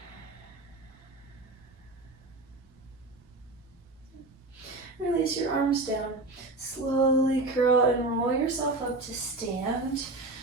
Release your arms down. Slowly curl and roll yourself up to stand.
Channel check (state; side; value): quieter; left; 3.0 dB